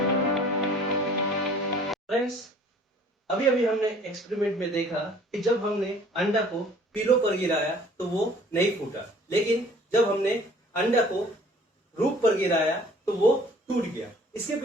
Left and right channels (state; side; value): normal; both; correlation 0.52